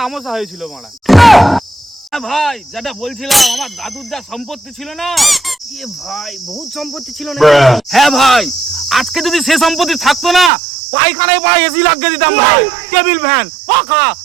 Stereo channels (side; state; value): left; drops out; at 10.5 s